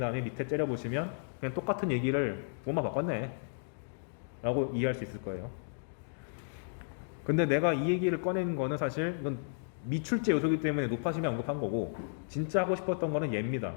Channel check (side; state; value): right; silent; digital silence